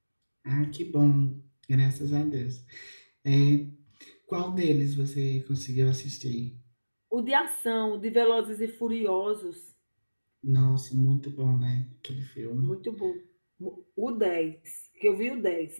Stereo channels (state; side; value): inverted; both; correlation -1.00